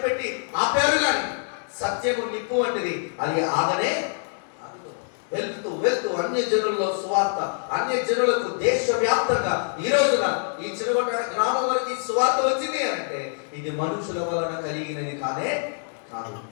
పెట్టి ఆపారు. కానీ సత్యము నిప్పు వంటిది, అది ఆగనే వెళ్తూ వెళ్తూ అన్య జనులలో సువార్త, అన్య జనులకు దేశవ్యాప్తంగా ఈ రోజున ఈ చిరుగొట్ట గ్రామం వరకు సువార్త వచ్చింది అంటే ఇది మనుషుల వలన కలిగినది కానే కాదు,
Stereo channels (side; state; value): right; silent; digital silence